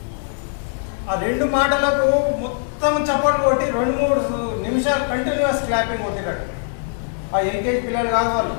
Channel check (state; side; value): silent; right; digital silence